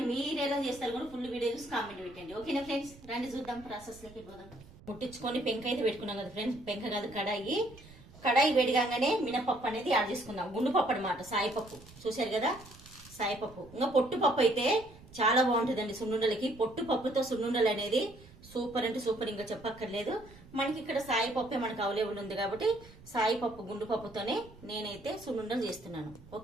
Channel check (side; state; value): right; noise; rumble, 21 dB below the sound